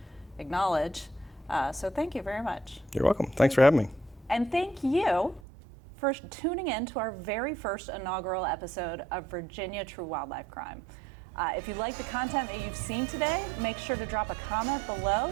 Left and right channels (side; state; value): left; drops out; at 5.4 s